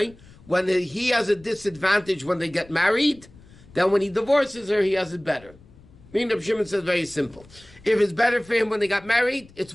when he has a disadvantage when they get married, then when he divorces her, he has it better. Meaning Reb Shimon says very simple. If it's better for him when they got married, it's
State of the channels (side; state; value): left; noise; rumble, 24 dB below the sound